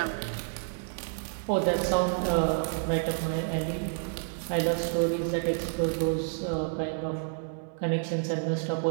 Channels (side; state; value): left; silent; 58 dB below the other